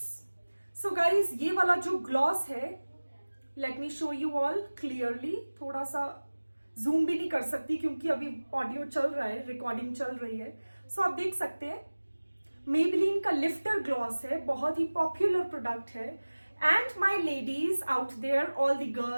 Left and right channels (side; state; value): both; inverted; correlation -1.00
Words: So guys ये वाला जो ग्लॉस है, let me show you all clearly, थोड़ा सा जूम भी नहीं कर सकती क्योंकि अभी ऑडियो चल रहा है, रिकॉर्डिंग चल रही है। सो आप देख सकते हैं मेबेलिन का लिफ्टर ग्लॉस है, बहुत ही पॉपुलर प्रोडक्ट है। And my ladies out there, all the